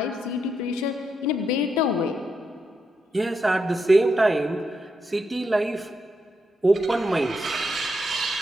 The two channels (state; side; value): normal; both; correlation 0.82